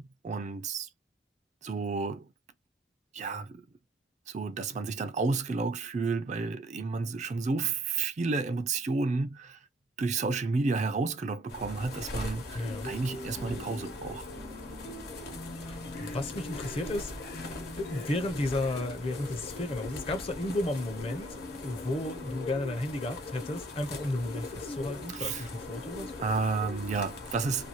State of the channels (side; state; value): both; normal; correlation 0.61